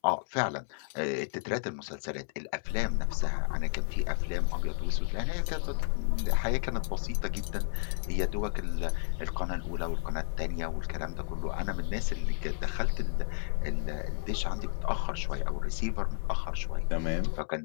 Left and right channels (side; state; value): right; silent; 57 dB below the other